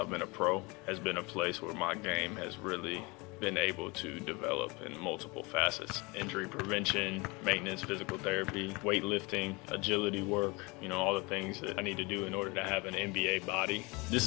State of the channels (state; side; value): quieter; right; 26.4 dB